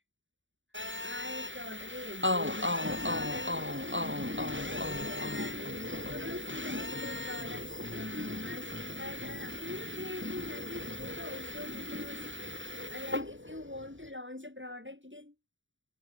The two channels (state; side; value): late; left; 0.55 ms